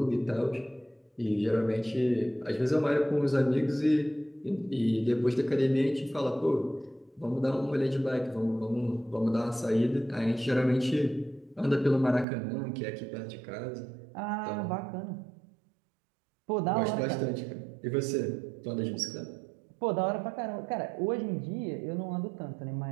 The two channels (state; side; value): drops out; left; at 12.2 s